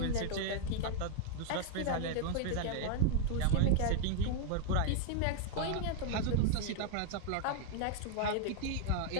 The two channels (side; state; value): both; different; correlation 0.00